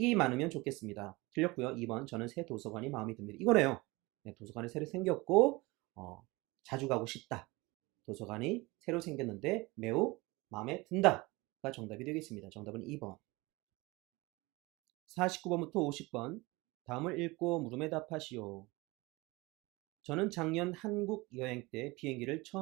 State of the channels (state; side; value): quieter; left; 23.1 dB